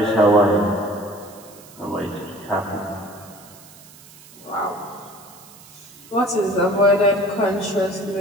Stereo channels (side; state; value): right; noise; hiss, 22 dB below the sound